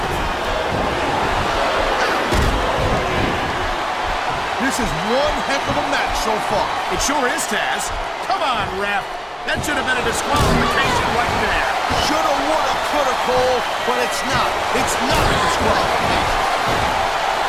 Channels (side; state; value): both; identical; correlation 1.00